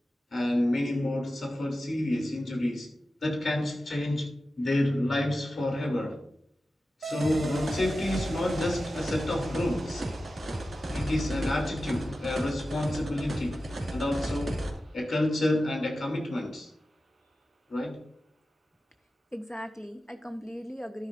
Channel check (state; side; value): normal; both; correlation 0.93